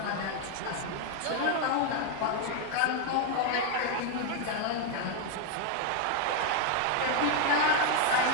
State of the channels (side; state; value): both; different; correlation 0.01